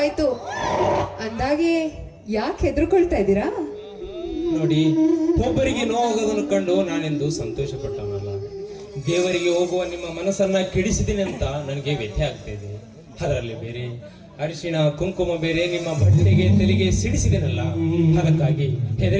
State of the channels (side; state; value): both; identical; correlation 1.00